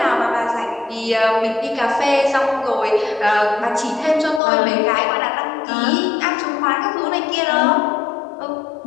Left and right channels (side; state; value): right; drops out; at 4.4 s